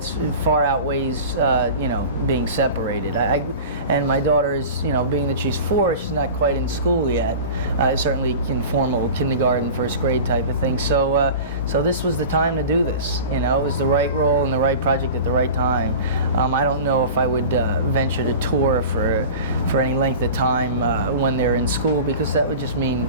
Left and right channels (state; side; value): inverted; both; correlation -0.35